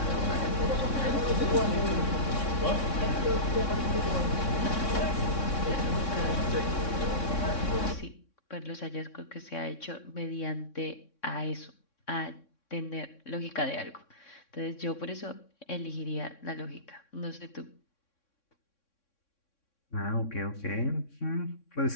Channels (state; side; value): late; right; 3.6 ms